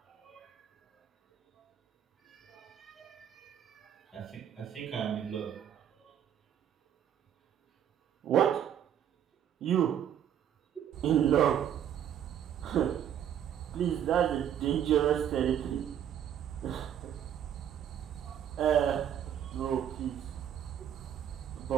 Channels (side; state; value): left; quieter; 9.7 dB